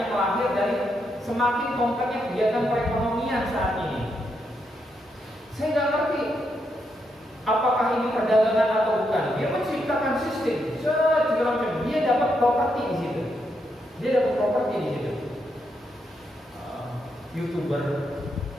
lahir dari semakin kompleknya kegiatan perekonomian saat ini. Saya nggak ngerti apakah ini perdagangan atau bukan. Dia menciptakan sistem, segala macam. Dia dapat properti di situ. YouTuber,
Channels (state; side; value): normal; both; correlation 0.80